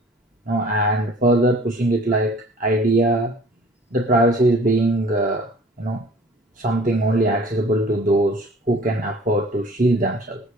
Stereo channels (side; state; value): both; normal; correlation 0.49